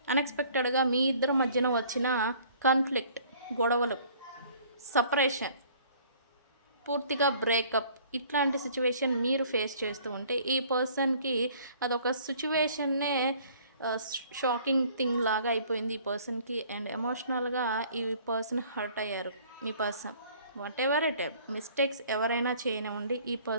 అన్ఎక్స్పెక్టెడ్గా మీ ఇద్దరి మధ్యన వచ్చిన కాన్ఫ్లిక్ట్, గొడవలు, సపరేషన్ పూర్తిగా బ్రేకప్ ఇట్లాంటి సిచ్యువేషన్ మీరు ఫేస్ చేస్తూ ఉంటే ఈ పర్సన్కి అదొక సిచ్యువేషన్నే షాకింగ్ థింగ్ లాగా అయిపోయింది ఈ పర్సన్కి. అండ్ ఎమోషనల్గా ఈ పర్సన్ హర్ట్ అయ్యారు. మీ person whatever it mistakes ఎవరైనా చేయనివ్వండి, ఈ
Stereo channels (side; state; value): both; inverted; correlation -0.55